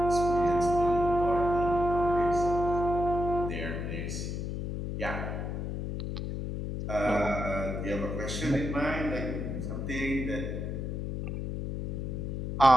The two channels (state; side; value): noise; left; hum, 4 dB below the sound